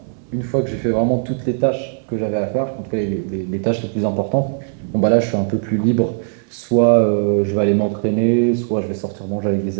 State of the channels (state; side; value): silent; left; 66 dB below the other